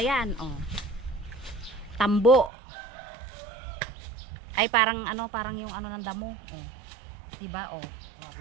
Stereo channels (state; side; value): drops out; left; at 2.5 s